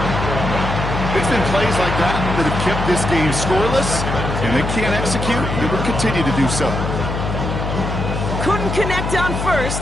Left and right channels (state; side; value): noise; left; hum, 3 dB below the sound